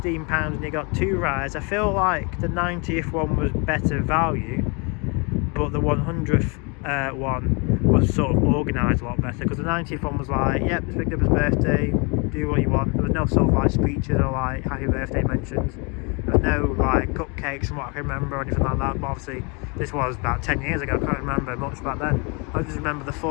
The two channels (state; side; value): quieter; right; 32.0 dB